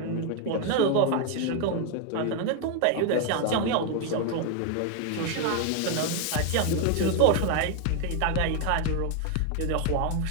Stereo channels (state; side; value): different; both; correlation 0.01